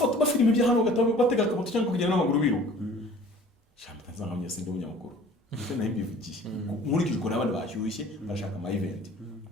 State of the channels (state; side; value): normal; both; correlation 0.49